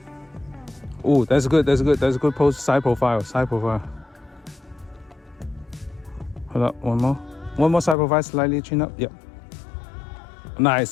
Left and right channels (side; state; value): right; drops out; at 8.0 s